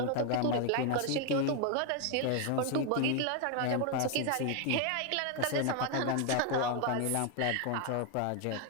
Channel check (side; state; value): both; different; correlation 0.01